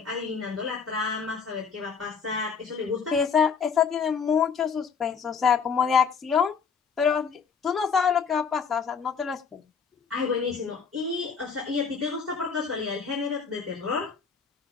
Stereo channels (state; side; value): quieter; right; 6.1 dB